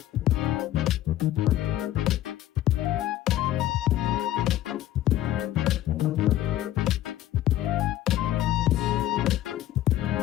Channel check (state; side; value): quieter; right; 13.6 dB